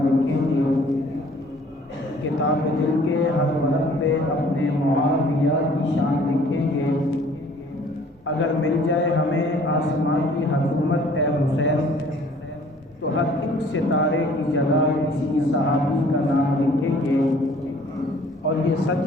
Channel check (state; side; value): normal; both; correlation 0.55